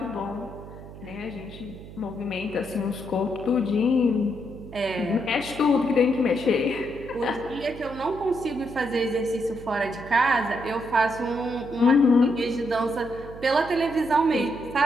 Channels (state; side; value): noise; right; hum, 15 dB below the sound